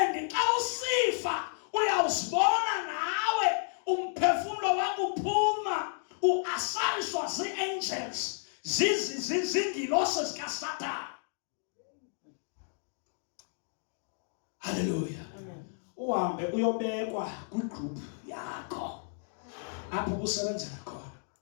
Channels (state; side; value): silent; right; digital silence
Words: xa usifa uyawuzibona nawe umphefumulo wakho uphuma uasayishwa zii-angels zingilose zikaSathane. Hallelujah. Uhambe uyobekwa kwigroup yakho apho usebenzela khona.